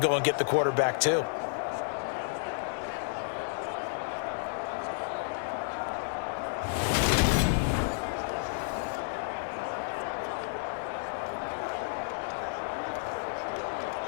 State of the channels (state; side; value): silent; right; digital silence